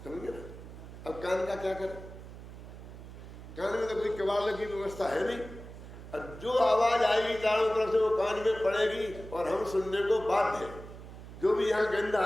समझे ना। अब कान का क्या करें? कान में तो कोई किवाड़ लगी व्यवस्था है नहीं, और जो आवाज आएगी चारों तरफ से वो कान में पड़ेगी और हम सुनने को बाध्य हैं। जो भी यहाँ गंध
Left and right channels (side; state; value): right; noise; hum, 14 dB below the sound